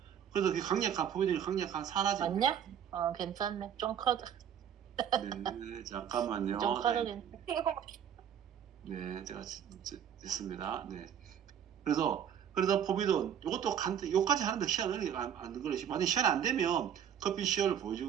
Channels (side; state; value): left; quieter; 9.0 dB